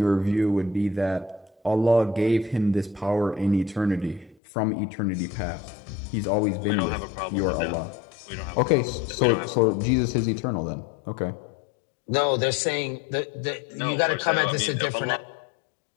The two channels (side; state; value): right; drops out; at 4.4 s